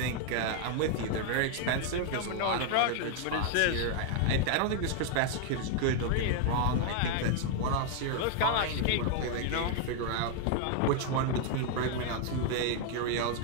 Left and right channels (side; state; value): both; different; correlation 0.00